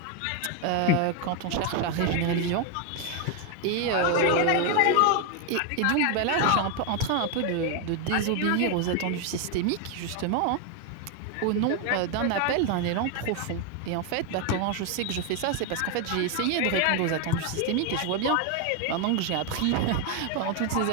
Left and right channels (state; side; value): different; both; correlation 0.01